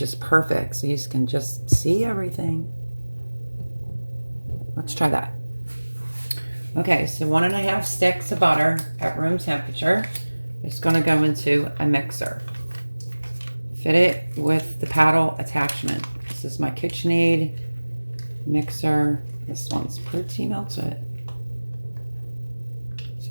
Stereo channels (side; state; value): both; inverted; correlation -1.00